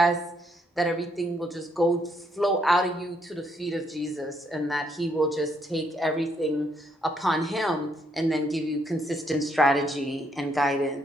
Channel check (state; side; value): normal; both; correlation 0.73